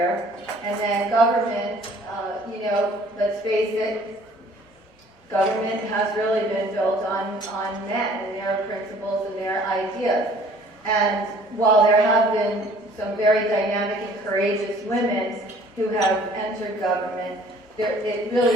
and then government. Let's face it, government has really been built on men and their principles and their ideas. And while there have been some very dynamic and courageous women who have entered government, it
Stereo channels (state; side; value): normal; both; correlation 0.54